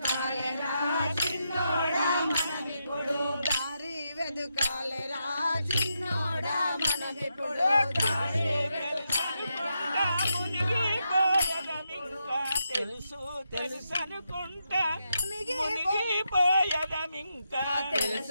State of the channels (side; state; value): both; inverted; correlation -0.84